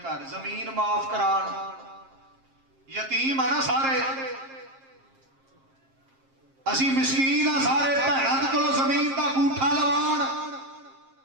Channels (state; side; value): late; left; 7.5 ms